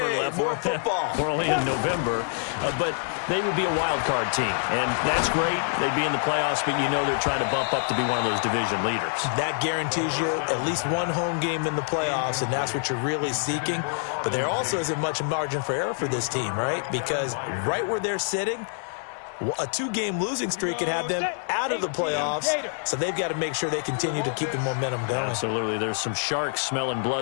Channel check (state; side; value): silent; right; digital silence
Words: left. More football. We're only in November. But they would be a wild card team. And that's great. They'd be in the playoffs, but you know they're trying to bump up to be one of those division leaders. That guarantees you at least one home game in the playoffs, and that's what you're really seeking. But there also isn't much margin for error for this team, right? Because right where they're sitting, a 2-game losing streak could have them out of the playoffs, so they've got to make sure they continue to keep the momentum going. Absolutely. There's some sharks smelling